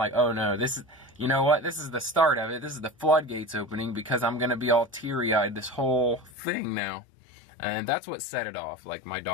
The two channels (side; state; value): right; drops out; at 6.3 s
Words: oh no, this you know what? This is the start of it. This is the floodgates opening, because I'm going to be all teary-eyed this whole thing now. And that's what set it off. Like, my